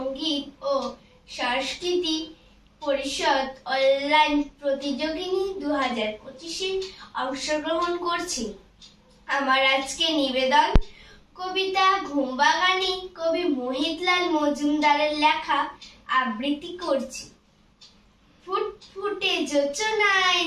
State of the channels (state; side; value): identical; both; correlation 1.00